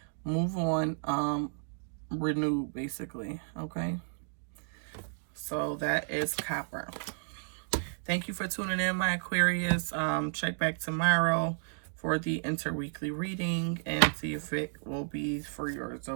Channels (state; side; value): silent; left; digital silence